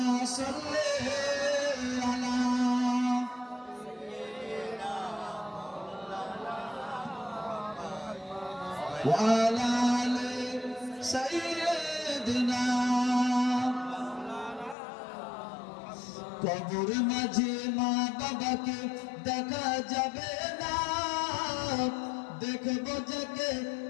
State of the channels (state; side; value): drops out; right; at 14.8 s